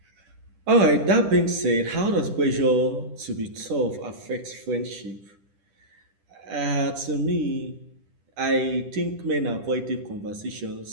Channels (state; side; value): late; left; 10 ms